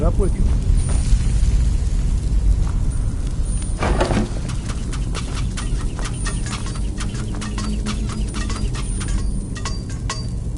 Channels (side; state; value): both; identical; correlation 1.00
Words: up with you.